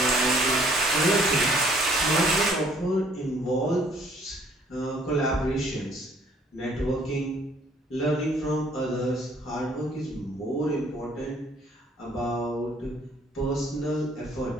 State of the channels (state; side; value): normal; both; correlation 0.60